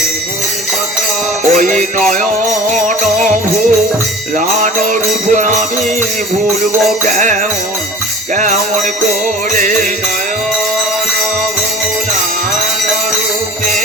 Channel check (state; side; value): normal; both; correlation 0.42